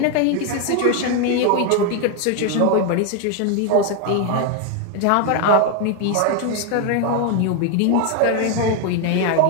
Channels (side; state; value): both; different; correlation 0.01